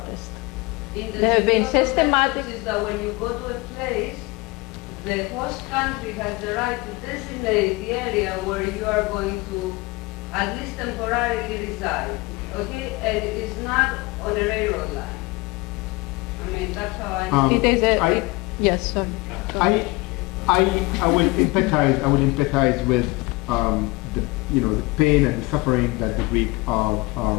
In the There have been systematic... is that when you go to a place, the host country has the right to designate the area where you are going to at least temporarily reside, okay? And it is not on a railroad line. I mean, that's how I... it is a... yes, sorry. I will empathize with the pain and the suffering that the Greek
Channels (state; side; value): quieter; right; 24.0 dB